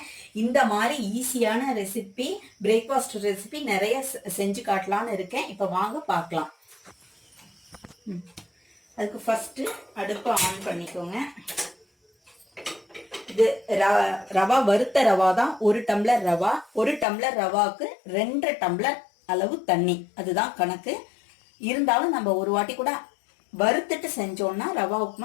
இந்த மாதிரி ஈஸியான ரெசிபி, பிரேக்ஃபாஸ்ட் ரெசிபி நிறைய செஞ்சு காட்டலான்னு இருக்கேன். இப்போ வாங்க பார்க்கலாம். அதுக்கு ஃபஸ்ட்டு அடுப்பை ஆன் பண்ணிக்கோங்க. இது ரவா வறுத்த ரவா தான். 1 டம்ளர் ரவா. 1 டம்ளர் ரவாவுக்கு 2 டம்ளர் அளவு தண்ணி, அதுதான் கணக்கு. இருந்தாலும் நம்ம ஒரு வாட்டி கூட வறுத்துட்டு செஞ்சோம்னா ரவா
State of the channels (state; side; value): drops out; right; at 17.1 s